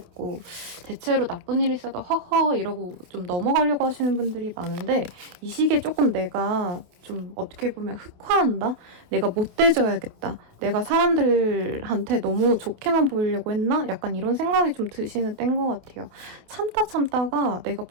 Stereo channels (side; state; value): left; late; 28 ms